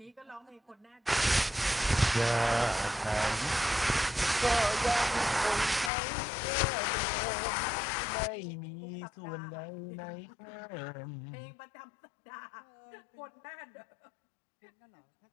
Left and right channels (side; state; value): right; drops out; at 5.9 s